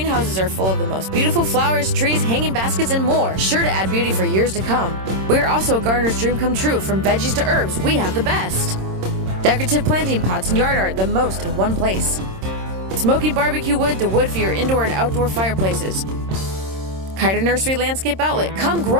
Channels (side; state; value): left; late; 26 ms